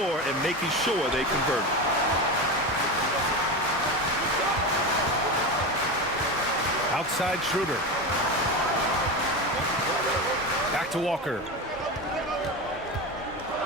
and making sure they convert. Outside Schroeder. Back to Walker.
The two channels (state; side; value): normal; both; correlation 0.21